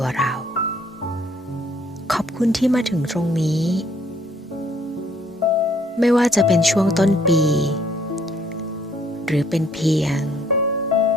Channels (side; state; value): both; normal; correlation 0.64